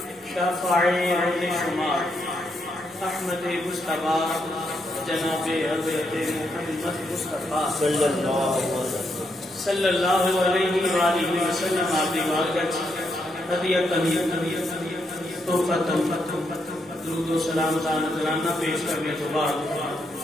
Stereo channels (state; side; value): normal; both; correlation 0.79